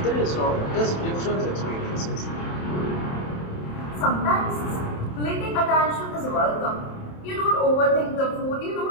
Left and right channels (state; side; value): late; right; 27 ms